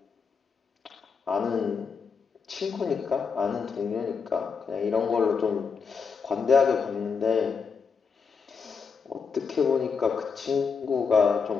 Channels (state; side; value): quieter; right; 5.7 dB